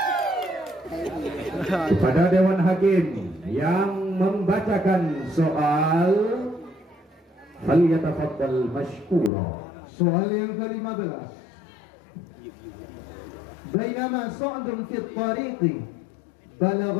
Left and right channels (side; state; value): right; drops out; at 9.3 s